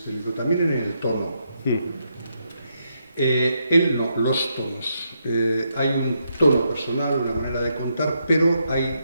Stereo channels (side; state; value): both; inverted; correlation -0.80